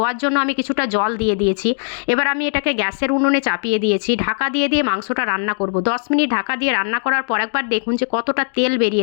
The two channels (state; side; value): silent; right; digital silence